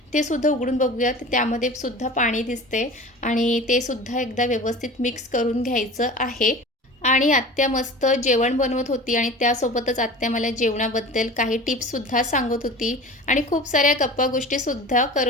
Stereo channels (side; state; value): both; normal; correlation 0.37